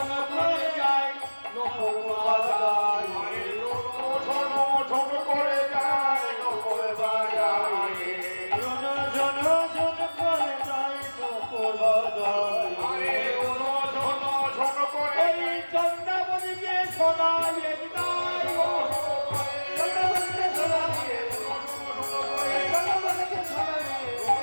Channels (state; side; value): inverted; both; correlation -1.00